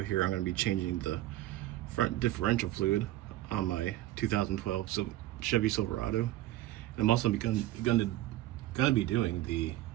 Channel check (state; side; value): quieter; left; 15.2 dB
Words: I'm going to be changing the front differential fluid on my 2012 Chevy Silverado. And I'm also going to be doing the